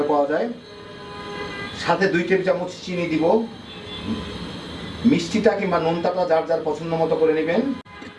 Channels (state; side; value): identical; both; correlation 1.00